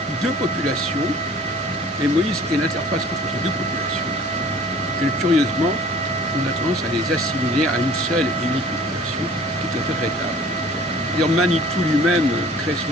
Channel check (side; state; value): both; normal; correlation 0.49